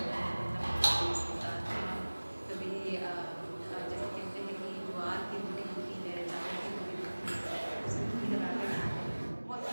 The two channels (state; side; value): inverted; both; correlation -1.00